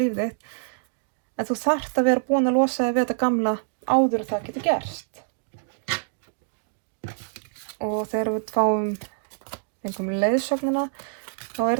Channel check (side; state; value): left; silent; digital silence